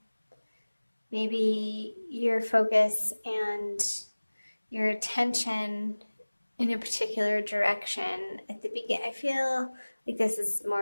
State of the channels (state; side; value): inverted; both; correlation -1.00